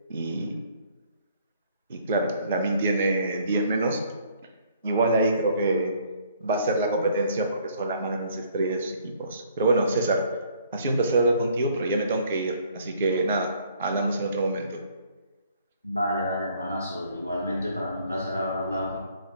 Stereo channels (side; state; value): both; inverted; correlation -0.61